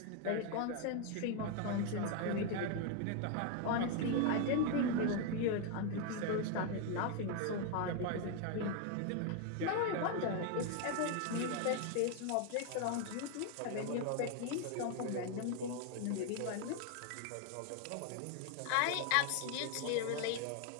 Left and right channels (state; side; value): different; both; correlation 0.01